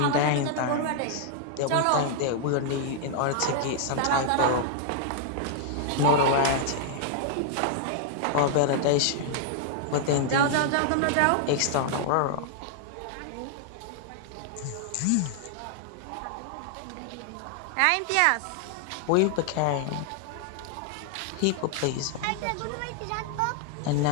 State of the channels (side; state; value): both; different; correlation 0.00